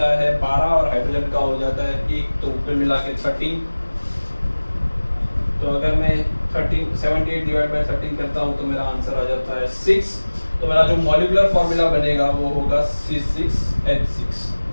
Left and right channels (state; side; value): inverted; both; correlation -1.00